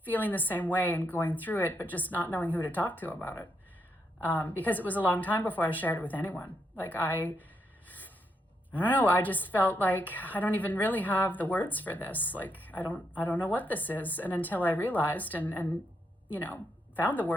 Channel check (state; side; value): normal; both; correlation 0.79